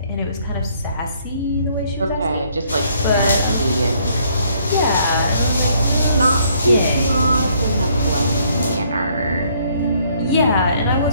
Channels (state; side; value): inverted; both; correlation -0.66